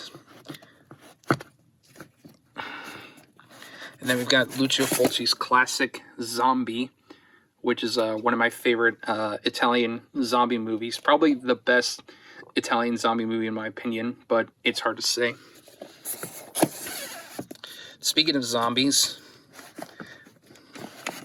Lucio Fulci's classic Zombie, which is one of my favorite Italian zombie movies. Probably the best Italian zombie movie in my opinion, but it's hard to say. Speaking of zombies,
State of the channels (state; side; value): identical; both; correlation 1.00